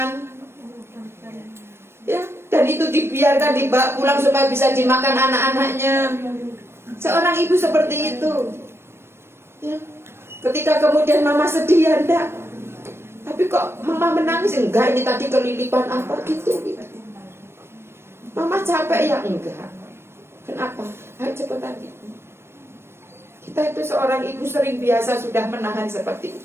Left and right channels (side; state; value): left; late; 0.12 ms